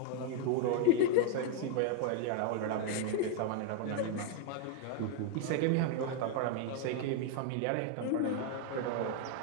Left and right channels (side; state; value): both; different; correlation 0.00